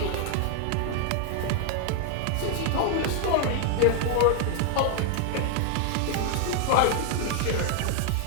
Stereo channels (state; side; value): different; both; correlation 0.00